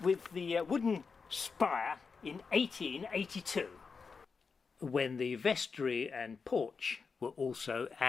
with the wooden spire in 1882, when the vestry and porch were also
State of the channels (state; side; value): quieter; right; 5.2 dB